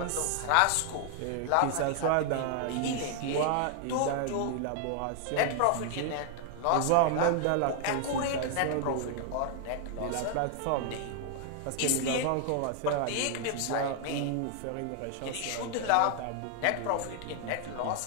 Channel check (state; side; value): different; both; correlation 0.00